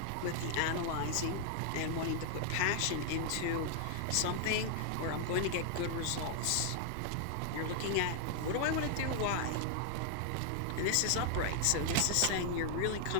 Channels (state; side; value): different; both; correlation 0.00